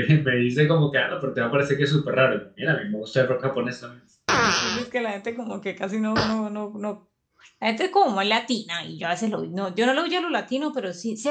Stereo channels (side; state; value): both; identical; correlation 1.00